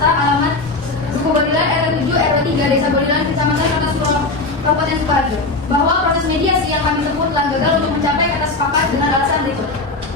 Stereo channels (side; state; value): right; quieter; 3.3 dB